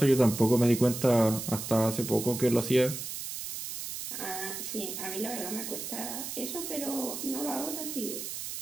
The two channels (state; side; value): noise; right; hiss, 7 dB below the sound